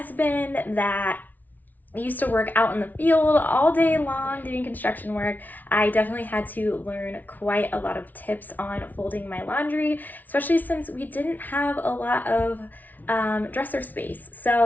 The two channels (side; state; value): right; late; 0.080 ms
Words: that used to work out in the field all day long doing construction work, I definitely had to learn quite a lot of tips on folding my laundry, especially since we didn't have a lot of dresser space.